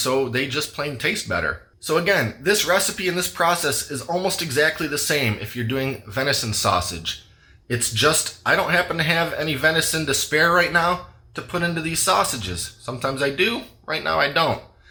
they just plain taste better. So again, this recipe and this process is almost exactly the same if you're doing venison sausage. It's just, I don't happen to have any venison to spare right now to put into these sausages. Sometimes I do, right now I don't.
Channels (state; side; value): identical; both; correlation 1.00